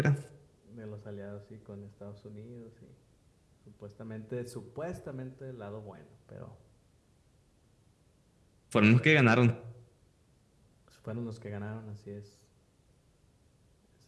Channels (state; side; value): identical; both; correlation 1.00